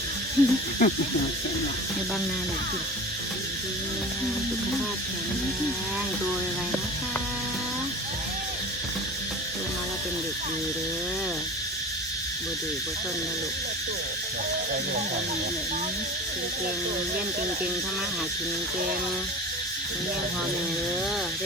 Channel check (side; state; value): both; normal; correlation 0.34